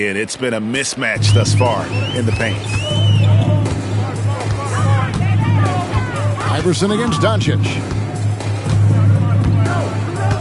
It's been a mismatch thus far in the paint. Iverson against Doncic.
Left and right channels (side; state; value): both; identical; correlation 1.00